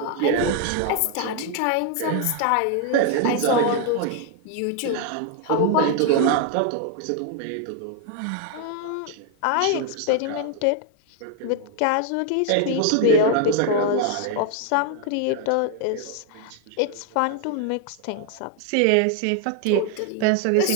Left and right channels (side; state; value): both; different; correlation 0.00